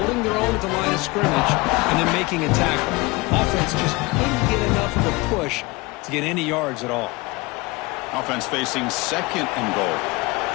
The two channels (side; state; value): right; quieter; 23.7 dB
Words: their own at the line of scrimmage, and then making a tackle. Offense just couldn't get enough of a push to get any yards at all. Offense facing 2nd and goal.